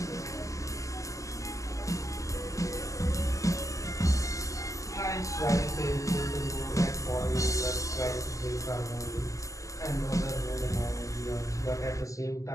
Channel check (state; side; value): late; right; 0.16 ms